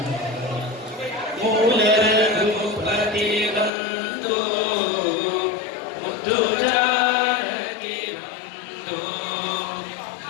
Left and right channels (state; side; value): drops out; right; at 3.7 s